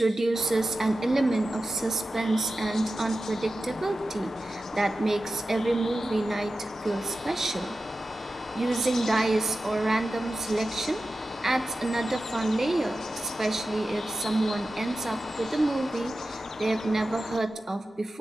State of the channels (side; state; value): both; normal; correlation 0.93